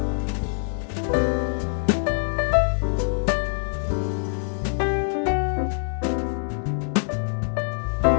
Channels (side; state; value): right; silent; digital silence